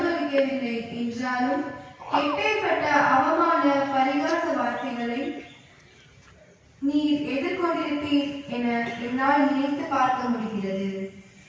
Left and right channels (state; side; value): identical; both; correlation 1.00